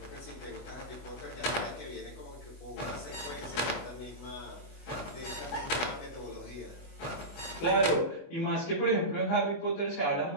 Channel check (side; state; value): right; late; 24 ms